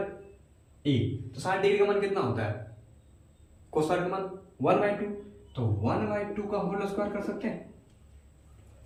ए, तो 60 डिग्री का मान कितना होता है, कोस स्क्वायर का मान 1/2, तो 1/2 का होल स्क्वायर कर सकते हैं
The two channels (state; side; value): identical; both; correlation 1.00